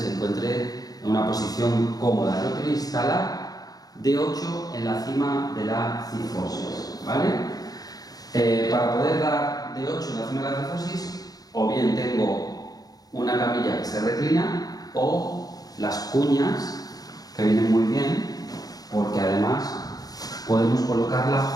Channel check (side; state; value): right; late; 0.18 ms